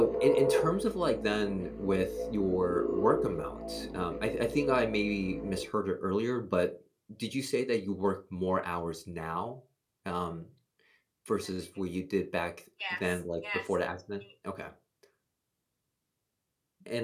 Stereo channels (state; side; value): identical; both; correlation 1.00